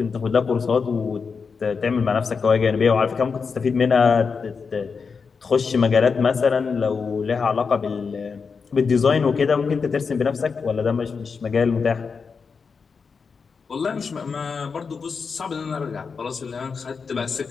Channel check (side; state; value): right; quieter; 5.3 dB